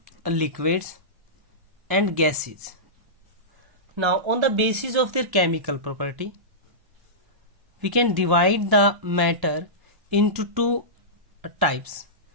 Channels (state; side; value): late; left; 1.0 ms